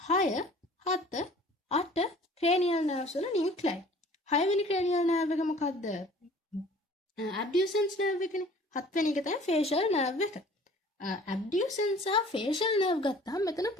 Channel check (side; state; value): both; normal; correlation 0.50